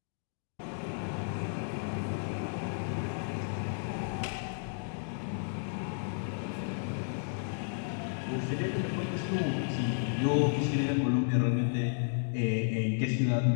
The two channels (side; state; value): right; silent; digital silence